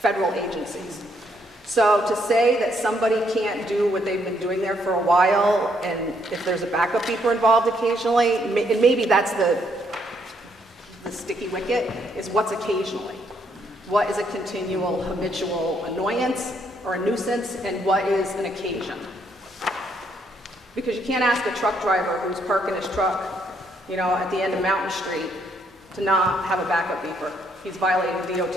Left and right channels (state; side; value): normal; both; correlation 0.72